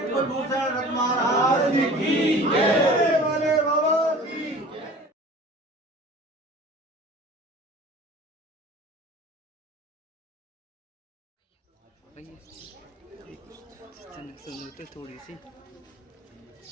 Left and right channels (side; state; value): both; normal; correlation 0.43